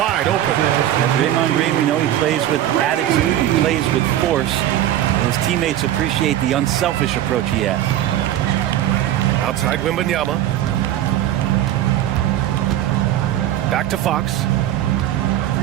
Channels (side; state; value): left; quieter; 12.4 dB